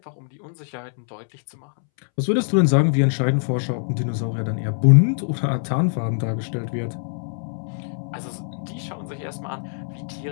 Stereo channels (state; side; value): silent; right; 63 dB below the other